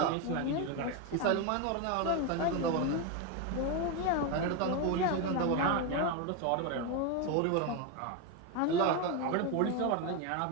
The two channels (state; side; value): different; both; correlation 0.02